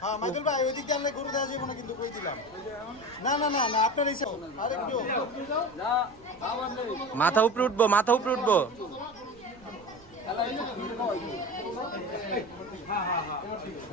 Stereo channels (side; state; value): right; noise; rumble, 25 dB below the sound